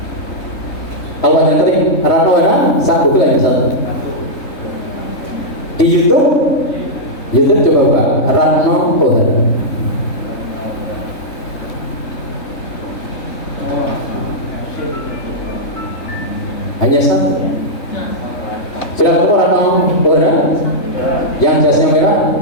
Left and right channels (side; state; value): right; late; 3.5 ms